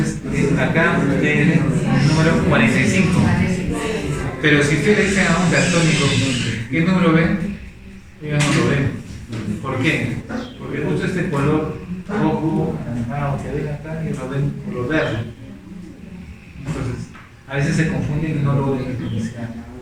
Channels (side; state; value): both; identical; correlation 1.00